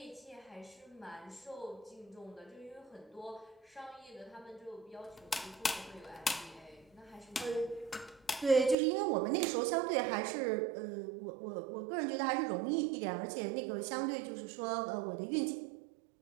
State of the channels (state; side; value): drops out; left; at 8.8 s